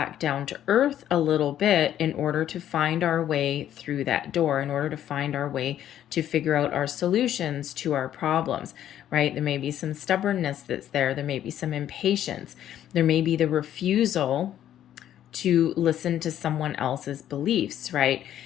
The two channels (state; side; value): quieter; right; 11.2 dB